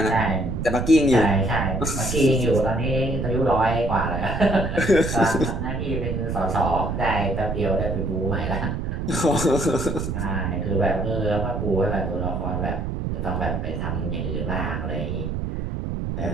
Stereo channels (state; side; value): noise; right; rumble, 3 dB below the sound